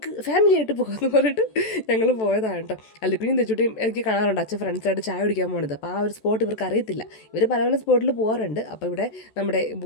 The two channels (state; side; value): late; right; 14 ms